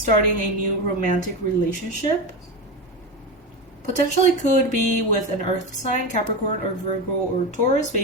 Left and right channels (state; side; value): normal; both; correlation 0.19